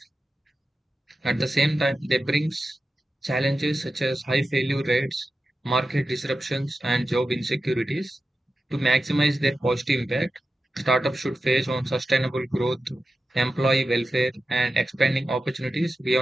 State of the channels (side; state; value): both; normal; correlation 0.92